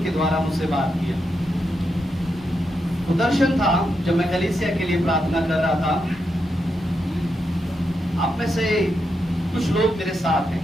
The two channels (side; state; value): both; normal; correlation 0.84